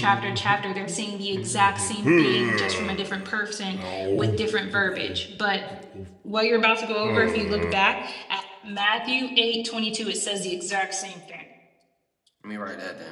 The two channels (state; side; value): identical; both; correlation 1.00